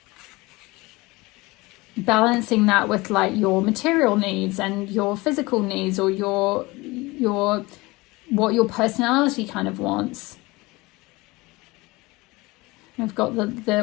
balancing that with like your material needs and your physical needs, or your what your personality kind of wants. I've got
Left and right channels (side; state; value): right; quieter; 22.4 dB